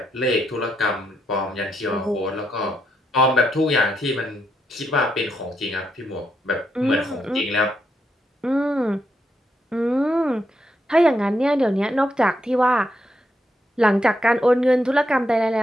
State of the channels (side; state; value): both; normal; correlation 0.80